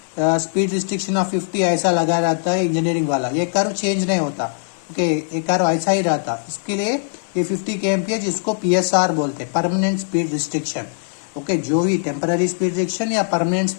स्पीड रिस्ट्रिक्शन ऑफ 50 ऐसा लगा रहता है इंजीनियरिंग वाला, ये कर्व चेंज नहीं होता, ओके, ये कर्व ऐसा ही रहता। इसके लिए ये 50 kmph इसको PSR बोलते हैं, परमानेंट स्पीड रिस्ट्रिक्शन। ओके, जो भी टेम्पररी स्पीड रिस्ट्रिक्शन या परमानेंट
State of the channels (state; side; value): silent; right; digital silence